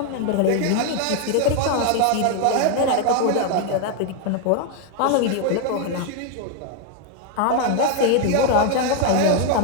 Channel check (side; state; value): both; different; correlation 0.01